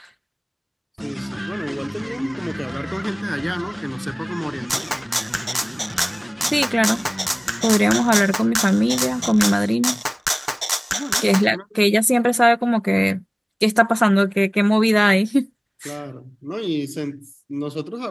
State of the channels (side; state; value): both; identical; correlation 1.00